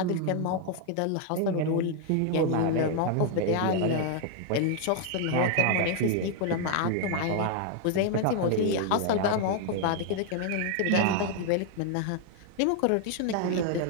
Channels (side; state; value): both; different; correlation 0.00